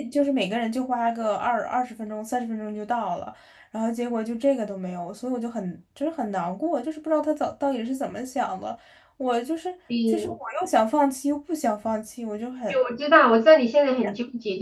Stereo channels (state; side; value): identical; both; correlation 1.00